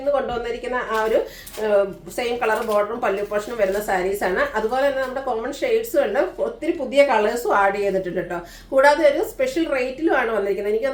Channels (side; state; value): both; identical; correlation 1.00